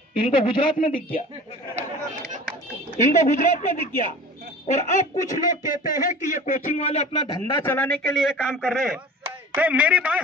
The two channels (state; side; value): normal; both; correlation 0.40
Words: इनको गुजरात में दिख गया, इनको गुजरात में दिख गया। और अब कुछ लोग कहते हैं कि ये कोचिंग वाले अपना धंधा चलाने के लिए काम कर रहे हैं। तो मेरी बात